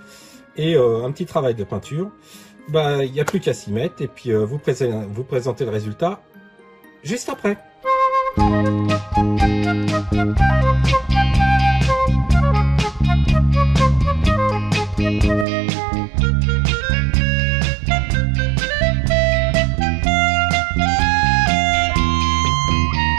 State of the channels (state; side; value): drops out; left; at 15.5 s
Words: Et un petit travail de peinture. Il n'y a plus qu'à s'y mettre. Et puis vous présentez le résultat juste après.